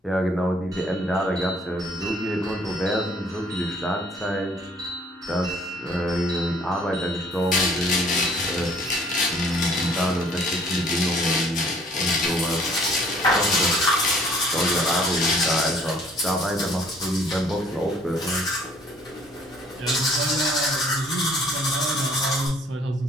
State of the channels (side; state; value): both; normal; correlation 0.58